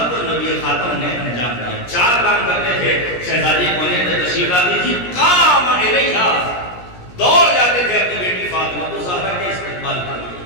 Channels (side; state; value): right; late; 17 ms